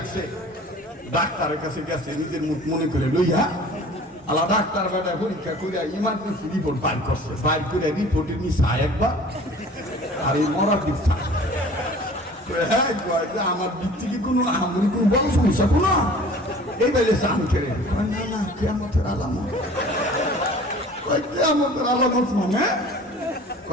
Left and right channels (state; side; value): normal; both; correlation 0.46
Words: ডাক্তারের কাছে গেছে নিজের মুখ মনে করে লইয়া, আলা ডাক্তার বেটা পরীক্ষা করে ইমার্জেন্সি রিপোর্ট বাইর করছে, বাইর করে রিপোর্টের নিচা একবার আর এই মরার দিক আমার দিক থেকে কোনো আমি কোনো বড় সমস্যা কোনো এই বেলে চান করে না না কেয়ামতের আলামত, কেয়ামতের আলামত মানে